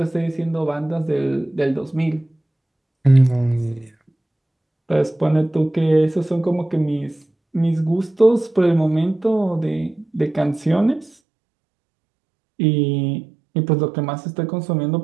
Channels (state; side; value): drops out; left; at 11.2 s